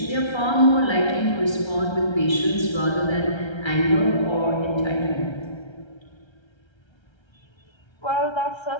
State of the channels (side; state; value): right; late; 1.3 ms